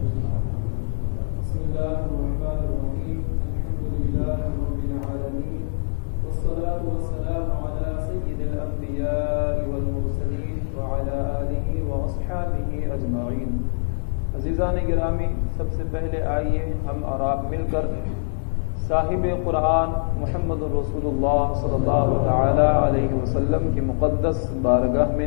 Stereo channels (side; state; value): right; silent; digital silence